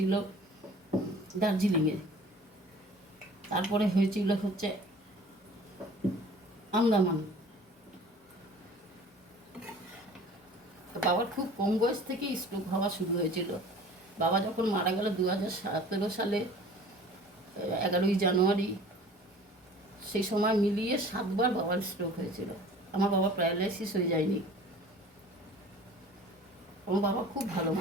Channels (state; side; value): normal; both; correlation 0.46